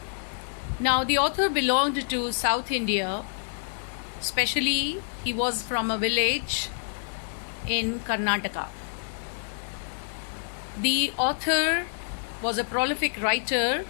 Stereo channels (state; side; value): silent; right; digital silence